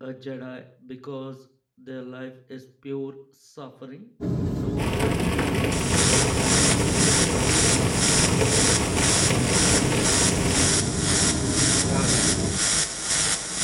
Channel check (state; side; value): identical; both; correlation 1.00